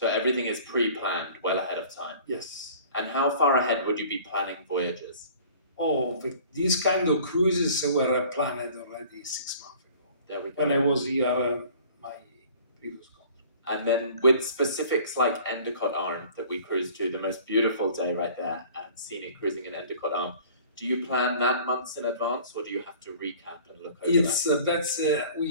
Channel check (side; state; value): both; inverted; correlation -0.48